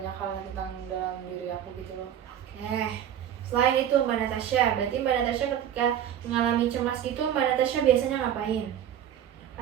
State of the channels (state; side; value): quieter; left; 10.0 dB